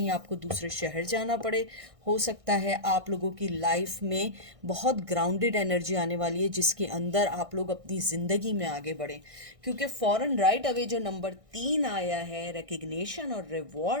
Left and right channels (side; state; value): left; late; 1.6 ms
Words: आपको दूसरे शहर जाना पड़े। हो सकता है आप लोगों की लाइफ में बहुत ग्राउंडेड एनर्जी आने वाली है जिसके अंदर आप लोग अपनी ज़िंदगी में आगे बढ़ें। क्योंकि फॉरन राइट अवे जो नंबर 3 आया है रिकग्निशन और